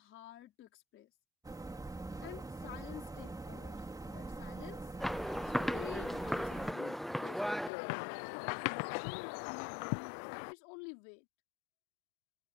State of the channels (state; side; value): drops out; right; at 7.7 s